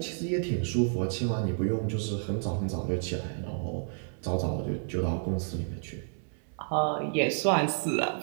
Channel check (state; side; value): silent; left; digital silence